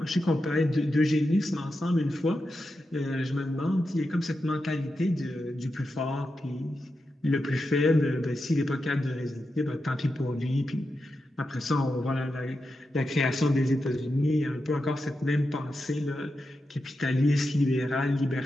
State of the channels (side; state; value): both; normal; correlation 0.89